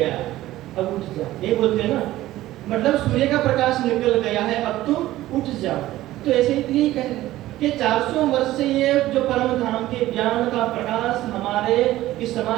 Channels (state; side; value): quieter; left; 15.5 dB